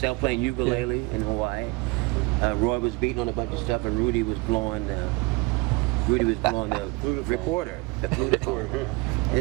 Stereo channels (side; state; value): left; quieter; 24.8 dB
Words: playing ukulele in Hawaii. Roy was beating on a bunch of stuff, and Rudy was blowing the recorder, the flutophone.